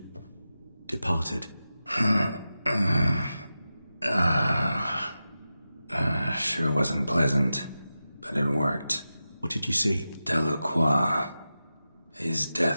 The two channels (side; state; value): both; inverted; correlation -0.92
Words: departed. Sure wasn't pleasant, but it worked. What did you see? Delacroix. His